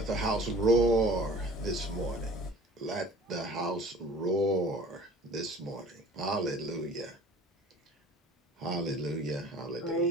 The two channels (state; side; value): normal; both; correlation 0.46